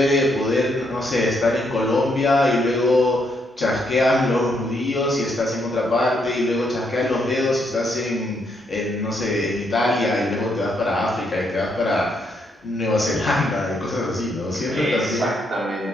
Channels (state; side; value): normal; both; correlation 0.76